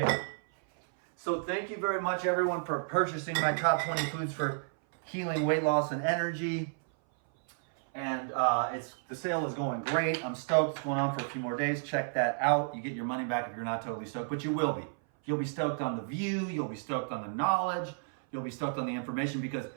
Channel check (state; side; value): silent; left; 57 dB below the other